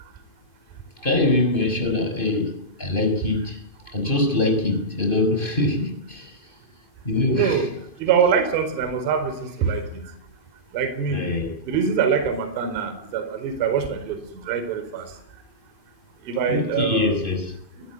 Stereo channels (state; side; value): late; right; 2.5 ms